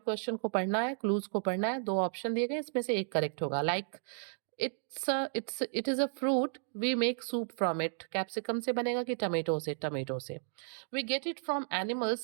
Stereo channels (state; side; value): silent; left; digital silence